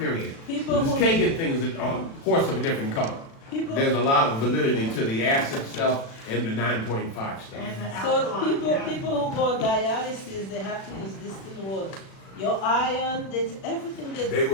People This who- Kagan thing is a horse of a different color. people, There's a lot of validity to the acid stuff and the 9.5 stuff. And the so alkaline, people who go on dialysis, they have to use distilled water. Your iron, that's everything that They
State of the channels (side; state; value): right; late; 36 ms